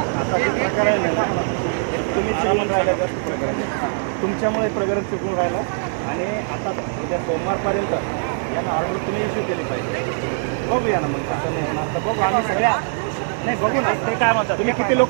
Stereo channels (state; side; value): silent; left; 65 dB below the other